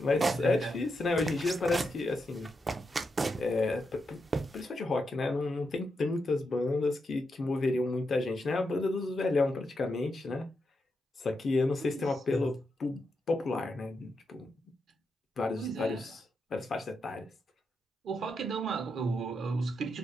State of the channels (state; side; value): normal; both; correlation 0.85